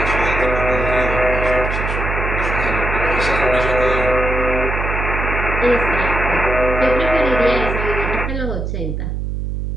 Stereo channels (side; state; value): right; noise; hum, 3 dB below the sound